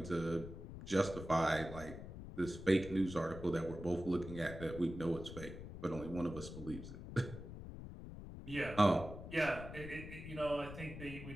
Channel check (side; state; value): left; noise; rumble, 11 dB below the sound